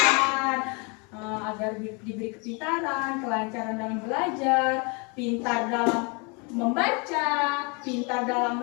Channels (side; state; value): right; quieter; 32.1 dB